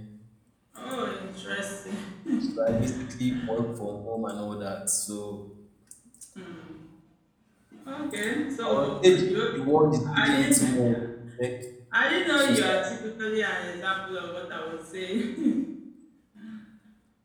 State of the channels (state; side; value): identical; both; correlation 1.00